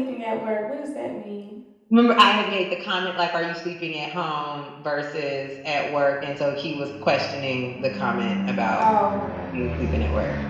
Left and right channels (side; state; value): both; identical; correlation 1.00